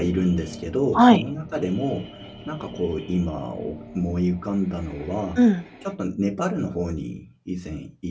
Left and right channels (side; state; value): both; identical; correlation 1.00